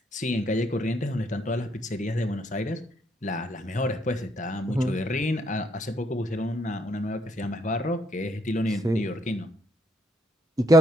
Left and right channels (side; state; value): both; normal; correlation 0.71